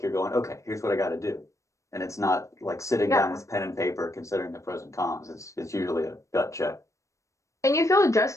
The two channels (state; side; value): late; right; 0.15 ms